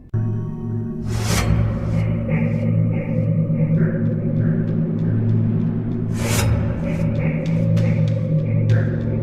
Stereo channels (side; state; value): both; identical; correlation 1.00